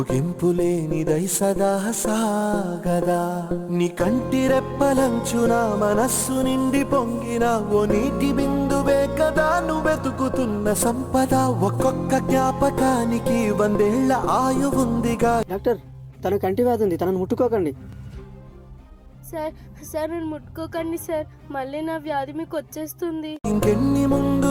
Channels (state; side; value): identical; both; correlation 1.00